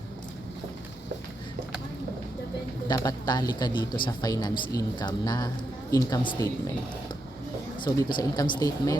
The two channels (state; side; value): normal; both; correlation 0.83